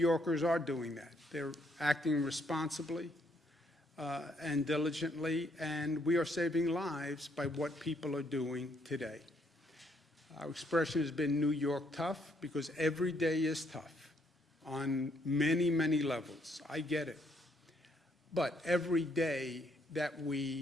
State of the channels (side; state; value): both; normal; correlation 0.71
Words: are doing that. They're acting responsibly and diligently, and we are saving lives by what people are doing today. Our expression has been New York tough because every day is tough on many, many levels. I get it. But every day that